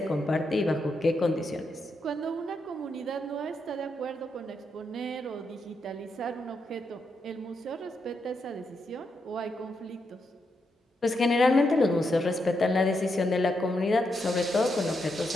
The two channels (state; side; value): normal; both; correlation 0.82